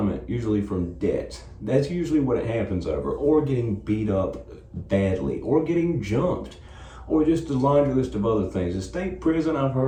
usually from debts. That's usually what it happens over, or getting beat up badly, or getting jumped, or just a laundry list of other things. The state prison, I've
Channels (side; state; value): both; identical; correlation 1.00